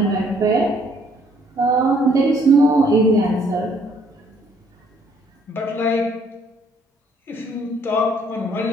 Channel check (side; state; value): both; normal; correlation 0.64